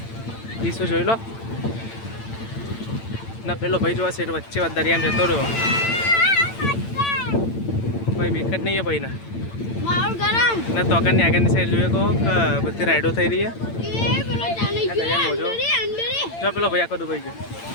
ઈસુ જોઈ લો ના પેલો ભાઈ જોવા સેટ વચ્ચે દરિયામાં જતો રહ્યો ભાઈ વિકેટ નહીં है भाई ना ना तो આગળની સાઈડ જોઈએ કહો કે બધી રાઈડો થઈ રહી છે જો પેલો ભાઈ આખો ડૂબાઈ ગયો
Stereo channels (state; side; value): late; right; 8.9 ms